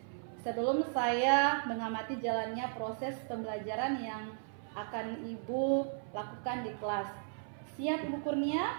Sebelum saya mengamati jalannya proses pembelajaran yang akan Ibu lakukan di kelas. Siap Ibu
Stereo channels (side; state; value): left; silent; 54 dB below the other